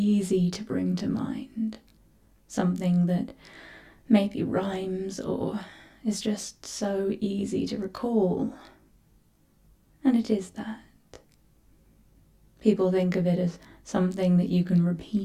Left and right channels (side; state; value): both; identical; correlation 1.00